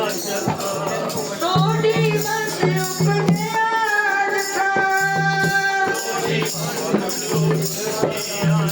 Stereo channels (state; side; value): identical; both; correlation 1.00